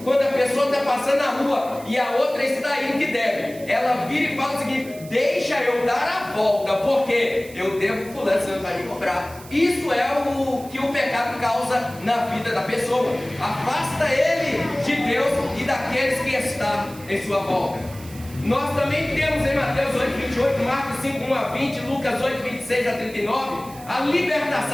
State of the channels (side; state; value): right; noise; hiss, 19 dB below the sound